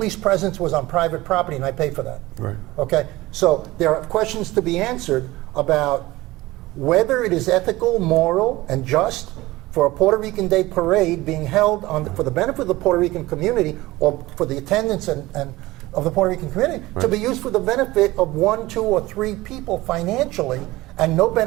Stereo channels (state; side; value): quieter; left; 19.0 dB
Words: presence was on private property, and I paid for that. Right. Okay? So there are questions to be answered about whether it is ethical, moral, and just for a Puerto Rican Day parade being held for the benefit of the Puerto Rican community, or for the attendance and of the Puerto Rican community, to be used for the benefit of 1, 2, or 3 people financially, and no